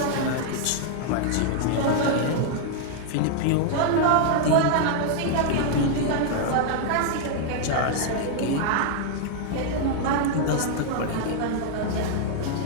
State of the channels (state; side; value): different; both; correlation -0.01